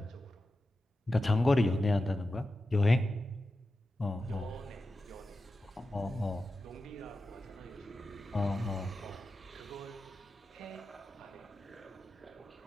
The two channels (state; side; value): normal; both; correlation 0.92